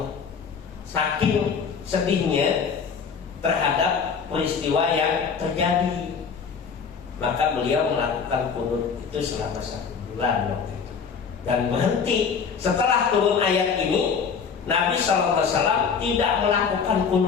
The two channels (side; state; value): right; quieter; 6.1 dB